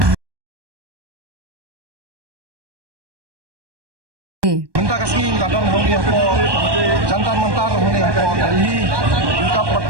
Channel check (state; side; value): late; left; 1.2 ms